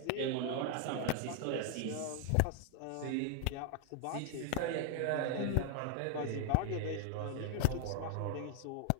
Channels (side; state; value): both; different; correlation 0.00